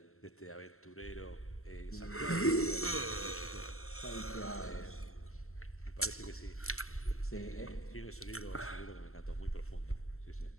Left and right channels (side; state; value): right; late; 0.63 ms